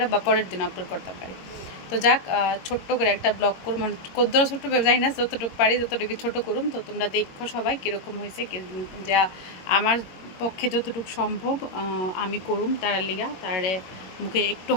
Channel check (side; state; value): right; late; 22 ms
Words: বা পরের দিন আপলোড করতাম পারি। তো যাক, ছোট্ট করে একটা ব্লগ করুম, মানে কদ্দরা ছোট্ট যাই না, যতটুকু পারি ততটুকু ছোটো করুম। তো তোমরা দেখো সবাই কীরকম হয়েছে, যা আমার পক্ষে যতটুকু সম্ভব আমি করুম তারার লিগা, তারে মুখে একটু